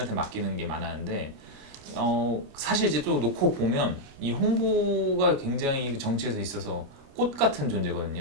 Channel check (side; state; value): left; late; 29 ms